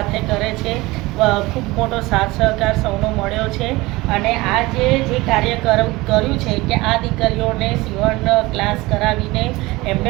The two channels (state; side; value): quieter; left; 21.0 dB